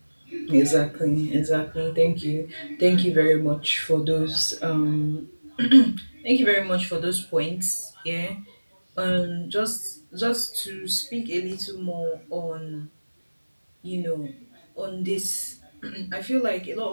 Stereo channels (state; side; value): inverted; both; correlation -1.00